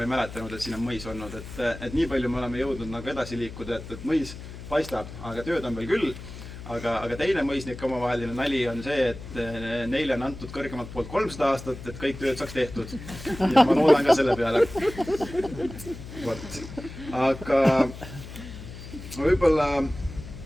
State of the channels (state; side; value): noise; left; hum, 12 dB below the sound